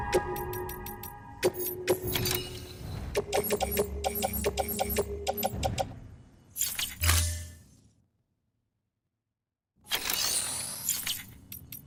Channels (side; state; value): both; identical; correlation 1.00